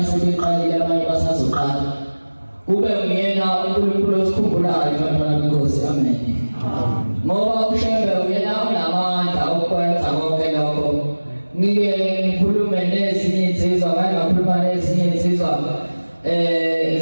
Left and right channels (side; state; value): both; inverted; correlation -1.00